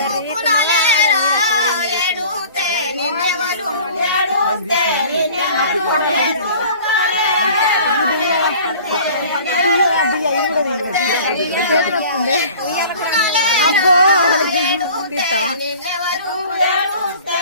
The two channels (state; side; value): inverted; both; correlation -0.46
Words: ఎడుతే నిన్నెవలు ఎడుతే అబ్బో